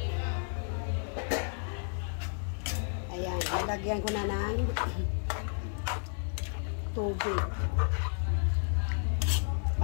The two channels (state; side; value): silent; right; 56 dB below the other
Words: Ayan, nalagyan ko na ng tubig